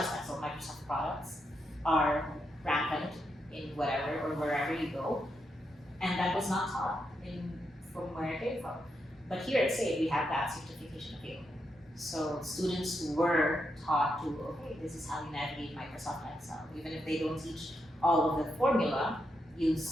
Excel, Microsoft products are rampant in whatever or wherever you go. And that was not taught from where I came from. But here at SAIT, we have that certification available. So students were taught to, okay, this is how you navigate Microsoft Excel. Even if they don't teach all of the formula, you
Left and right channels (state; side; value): normal; both; correlation 0.83